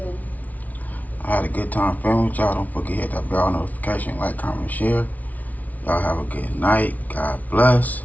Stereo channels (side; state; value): right; late; 0.074 ms